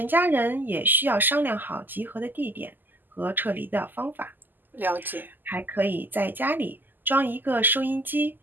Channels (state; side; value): late; left; 0.089 ms